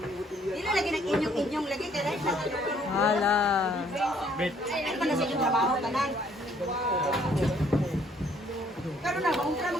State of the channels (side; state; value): both; normal; correlation 0.63